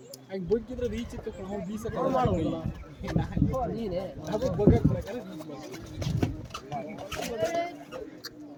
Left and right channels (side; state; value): both; identical; correlation 1.00